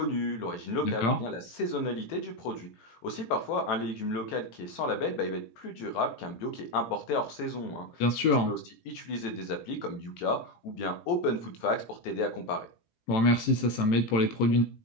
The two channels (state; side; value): late; right; 17 ms